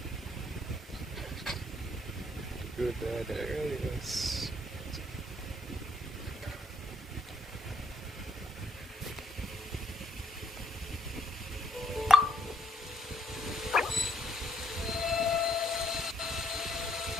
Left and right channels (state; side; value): normal; both; correlation 0.72